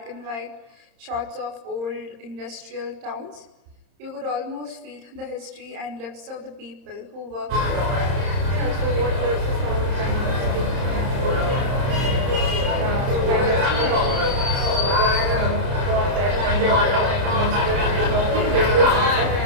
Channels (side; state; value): left; late; 30 ms